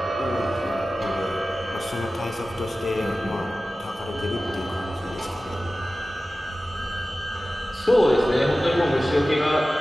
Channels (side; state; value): both; normal; correlation 0.96